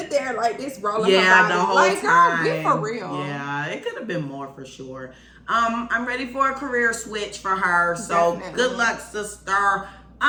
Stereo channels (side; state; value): both; identical; correlation 1.00